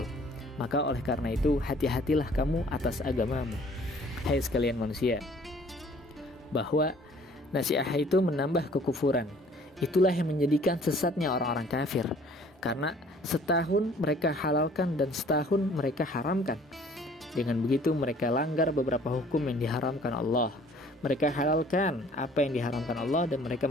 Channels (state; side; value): normal; both; correlation 0.55